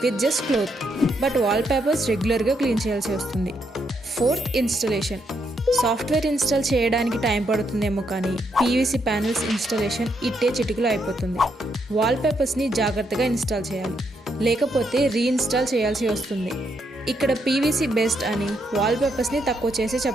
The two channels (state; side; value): normal; both; correlation 0.77